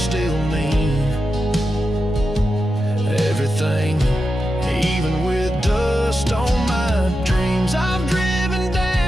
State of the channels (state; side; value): normal; both; correlation 0.90